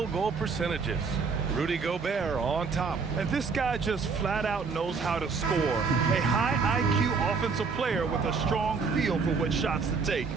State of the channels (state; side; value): quieter; left; 5.0 dB